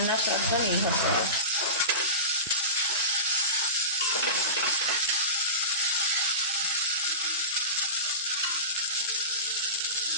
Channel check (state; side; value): inverted; both; correlation -0.32